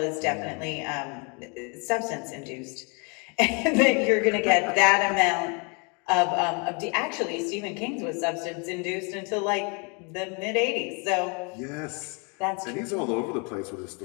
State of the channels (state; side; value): quieter; right; 33.9 dB